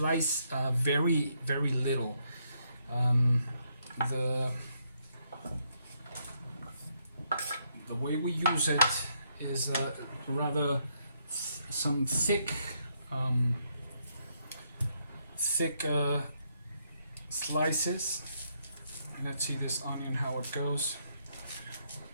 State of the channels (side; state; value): both; inverted; correlation -0.75